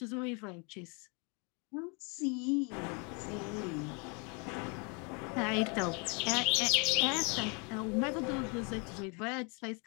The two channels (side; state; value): right; quieter; 33.4 dB